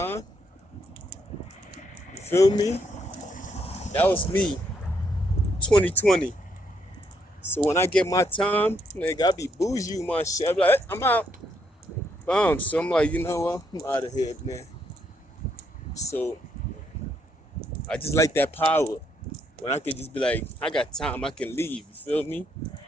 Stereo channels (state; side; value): normal; both; correlation 0.74